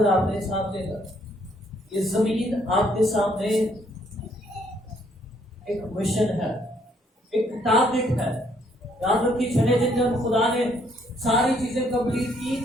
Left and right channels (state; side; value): normal; both; correlation 0.68